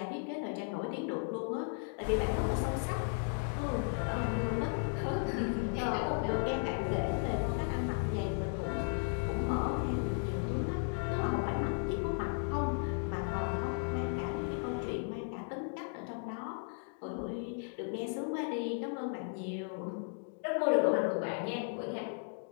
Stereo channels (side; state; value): right; silent; 54 dB below the other